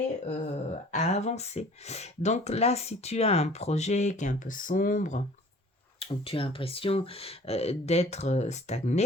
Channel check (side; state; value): both; normal; correlation 0.49